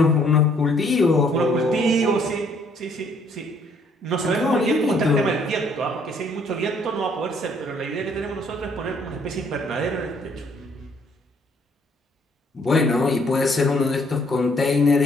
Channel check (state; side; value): normal; both; correlation 0.65